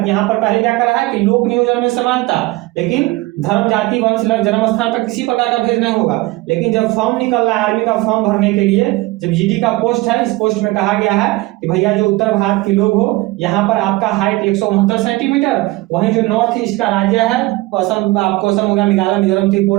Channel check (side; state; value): left; quieter; 20.5 dB